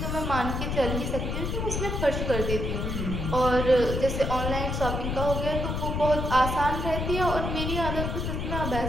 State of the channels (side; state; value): left; noise; rumble, 2 dB below the sound